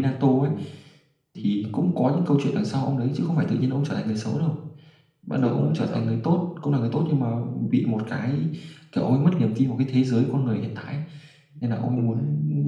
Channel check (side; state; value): both; identical; correlation 1.00